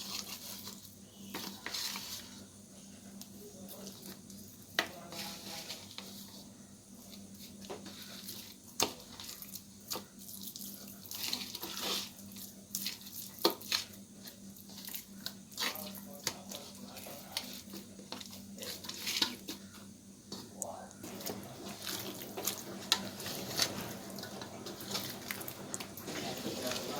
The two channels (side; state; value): both; identical; correlation 1.00